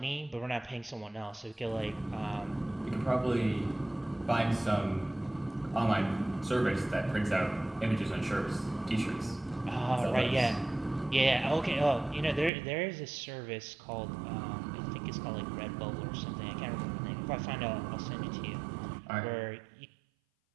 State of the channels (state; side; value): drops out; left; at 12.5 s